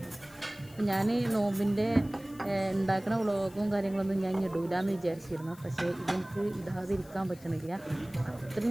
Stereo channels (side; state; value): left; noise; hiss, 23 dB below the sound